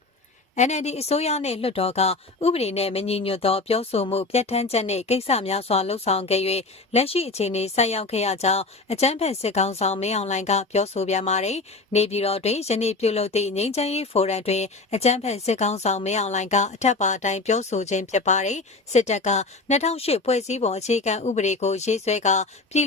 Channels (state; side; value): quieter; right; 3.5 dB